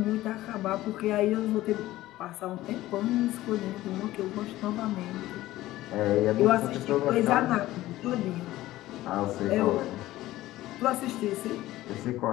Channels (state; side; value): quieter; right; 16.0 dB